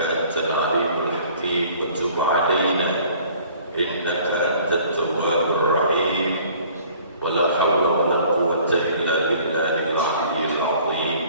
أنت العليم الحكيم وتب علينا إنك أنت التواب الرحيم ولا حول ولا قوة إلا بالله العلي العظيم.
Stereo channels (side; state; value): both; inverted; correlation -0.53